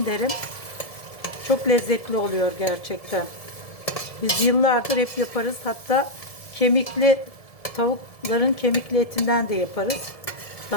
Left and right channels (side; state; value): right; late; 1.7 ms